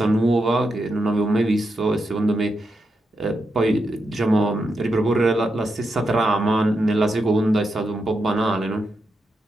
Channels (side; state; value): both; normal; correlation 0.85